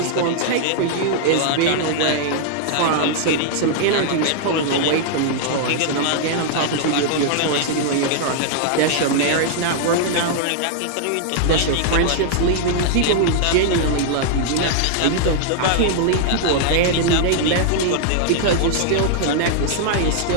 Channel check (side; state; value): both; different; correlation -0.01